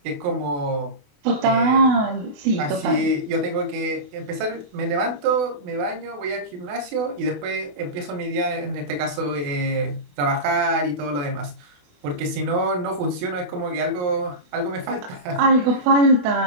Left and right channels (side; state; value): left; late; 28 ms